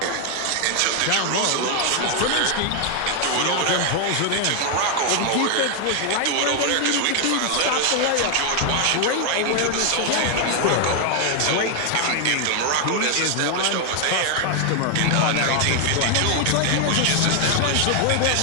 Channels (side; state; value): both; different; correlation 0.00